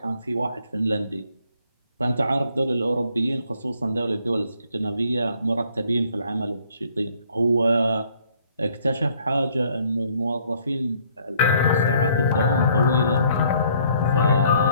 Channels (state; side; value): inverted; both; correlation -0.63